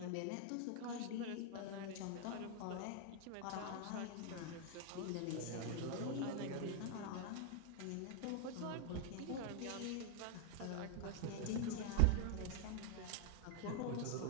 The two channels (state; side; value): different; both; correlation 0.00